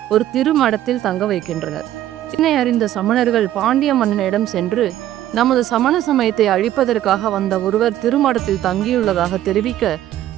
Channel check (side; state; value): left; quieter; 12.8 dB